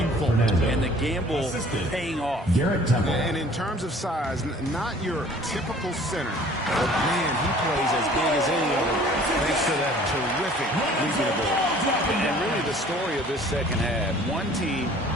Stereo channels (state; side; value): normal; both; correlation 0.52